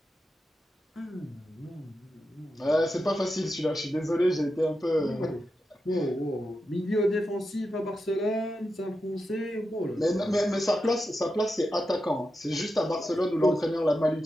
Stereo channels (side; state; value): both; normal; correlation 0.89